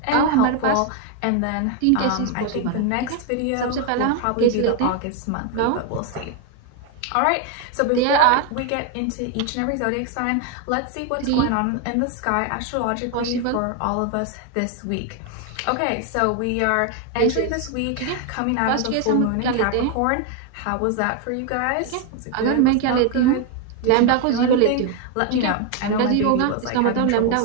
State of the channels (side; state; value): both; different; correlation 0.01